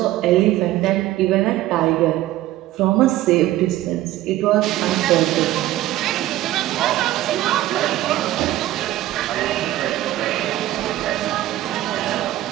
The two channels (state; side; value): quieter; left; 15.1 dB